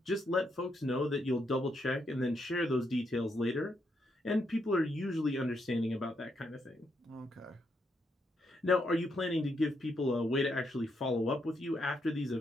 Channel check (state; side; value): normal; both; correlation 0.79